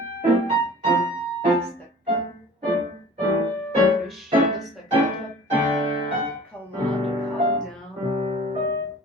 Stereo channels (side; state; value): both; normal; correlation 0.45